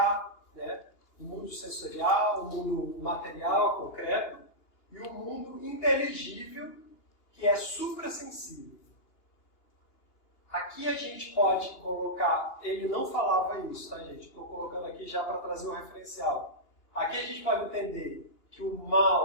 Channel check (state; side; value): late; right; 2.9 ms